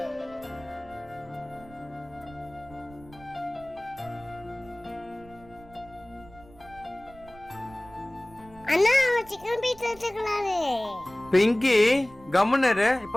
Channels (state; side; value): noise; right; rumble, 22 dB below the sound